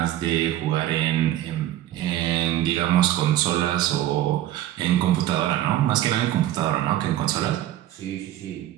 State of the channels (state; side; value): quieter; left; 13.3 dB